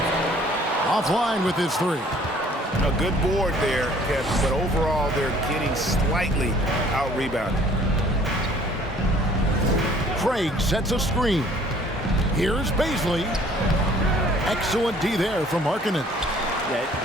Offline with his three. A good board there, Kevin, but overall they're getting slightly out-rebounded. Craig sets a screen. Here's Baisley. Excellent D there from Markkanen. Yeah,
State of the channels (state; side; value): normal; both; correlation 0.56